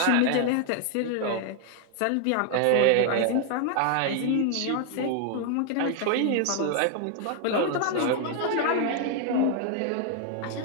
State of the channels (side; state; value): both; different; correlation 0.00